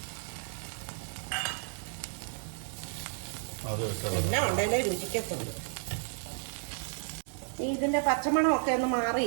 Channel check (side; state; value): left; silent; 56 dB below the other